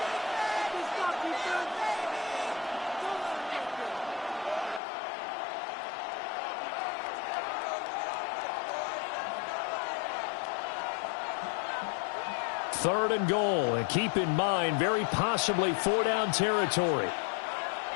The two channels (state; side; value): drops out; right; at 4.8 s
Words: Third and goal, and keep in mind, very possibly 4-down territory.